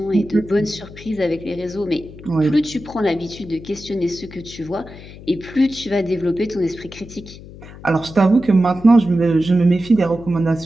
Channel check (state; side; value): noise; left; hum, 17 dB below the sound